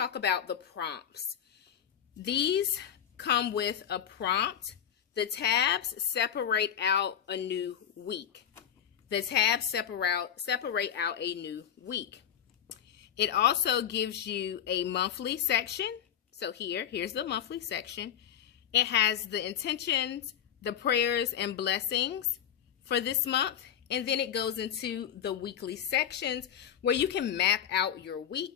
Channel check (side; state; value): right; quieter; 9.5 dB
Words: about the prompts. These come with a prompt. The tabs separate out a new week. The tabs separate out a new week. It also gives you a monthly section. So here's the monthly section. It has the intentions, the prayers, and blessings for this month, and then it goes into the weekly sections where you can map out your